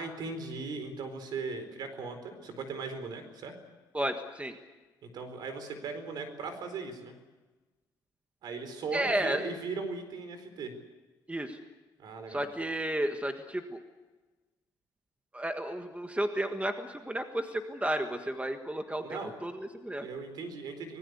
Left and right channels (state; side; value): normal; both; correlation 0.75